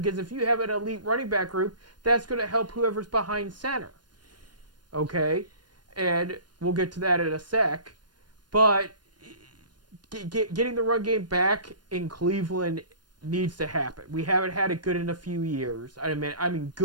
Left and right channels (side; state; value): left; late; 0.70 ms